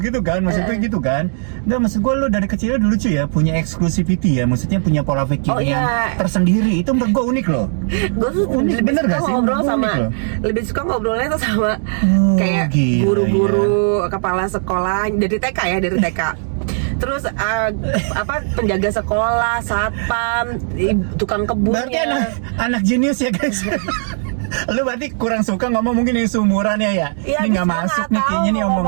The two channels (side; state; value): left; silent; 67 dB below the other